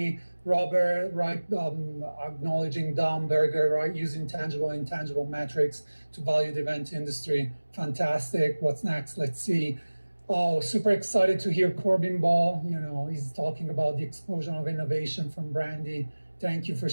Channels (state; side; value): inverted; both; correlation -1.00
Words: Robert, right, acknowledging Dom Berger, right, using tangible and intangible metrics to value the event industry. Fantastic. What's next? Let's see. Oh, super excited to hear Corbin Ball. He's talking about the explosion of innovation from Brandy. Thank you for